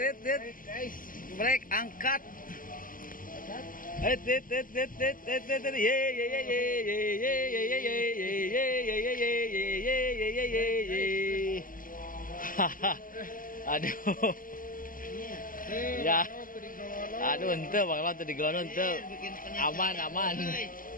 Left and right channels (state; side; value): late; right; 0.40 ms